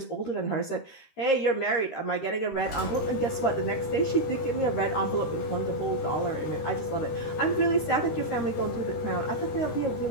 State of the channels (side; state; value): right; late; 13 ms